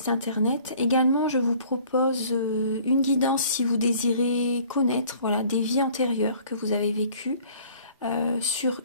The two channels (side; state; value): both; inverted; correlation -0.53